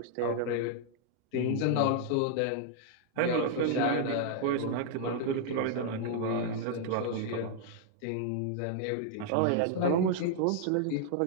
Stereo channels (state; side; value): different; both; correlation -0.01